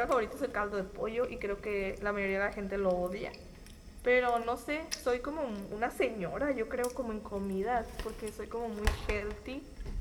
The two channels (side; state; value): both; identical; correlation 1.00